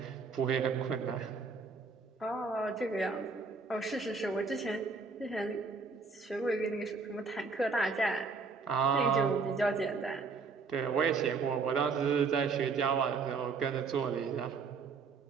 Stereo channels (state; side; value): quieter; left; 4.7 dB